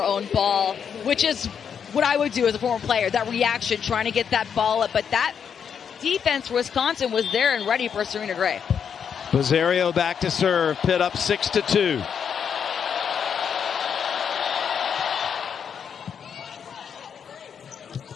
own ball, which is what I would do as a former player. That reaction, trying to get that ball up. But that defense for Wisconsin was there and ready for Serena Gray. Bizzario back to serve. Pitt up 6-2.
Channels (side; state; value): right; quieter; 7.4 dB